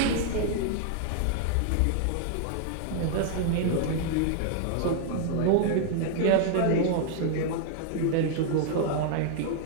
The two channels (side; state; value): both; different; correlation 0.00